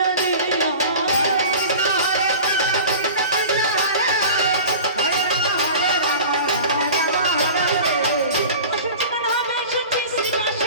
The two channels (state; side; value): inverted; both; correlation -0.37